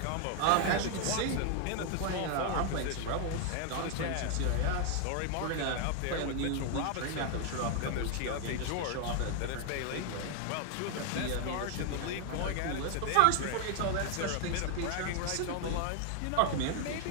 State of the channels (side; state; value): both; different; correlation 0.00